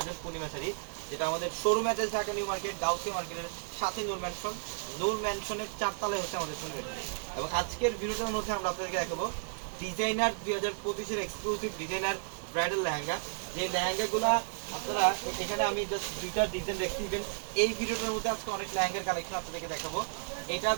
পূর্ণিমা শাড়ি, যেটা আমাদের শোরুমে আছে ঢাকা নিউ মার্কেট, গাউসি মার্কেটের সাথে নূর ম্যানশনের 4 তলায় হচ্ছে আমাদের শোরুম। এবং আজকের ভিডিওটার মধ্যে আমরা আপনাদেরকে দেখাবো ডিজাইনার 2025-এর এক্সক্লুসিভ ডিজাইনার ব্রাইডাল লেহেঙ্গা। যে লেহেঙ্গাগুলো আপনারা এখানে আমি জাস্ট দুইটা ডিজাইন দেখতে দিবেন। এই ভিডিওটার মধ্যে আজকে অনেক লেহেঙ্গার কালেকশন আপনাদেরকে দেখাবো। এটা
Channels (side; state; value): left; silent; digital silence